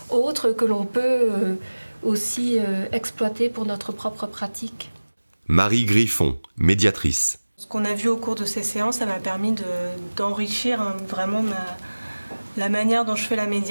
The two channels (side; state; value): both; inverted; correlation -1.00